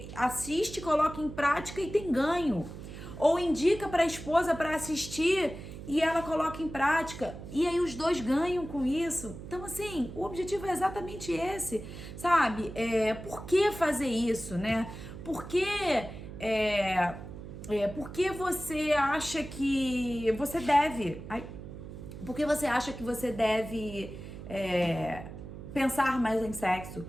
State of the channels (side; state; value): right; noise; hum, 12 dB below the sound